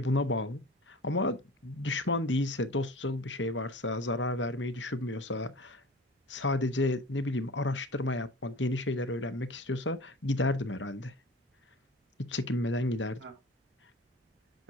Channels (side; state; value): both; normal; correlation 0.39